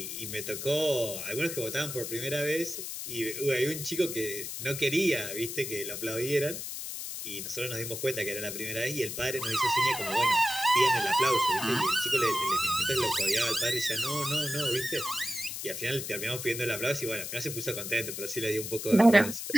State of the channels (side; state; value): left; noise; hiss, 6 dB below the sound